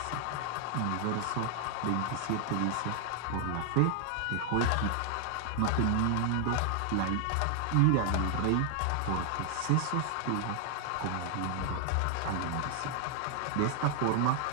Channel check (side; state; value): both; different; correlation 0.00